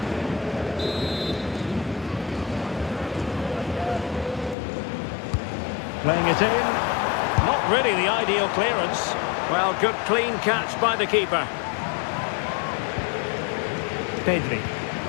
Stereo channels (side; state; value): right; drops out; at 4.5 s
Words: Playing it in. Not really the ideal clearance. Well, good clean catch by the keeper. Pedri.